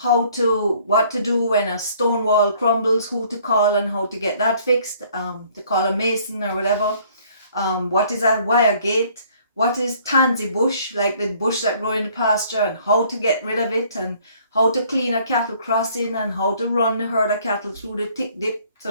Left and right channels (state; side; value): inverted; both; correlation -0.59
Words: to do when a stone wall crumbles, who to call and how to get that fixed, to call a mason or whatever. What is a wire gate? What is tansy bush, like the bush that grow in the pasture, and how to get rid of it, and how to clean a cattle crossing, and how to run the herd of cattle through the tick dip so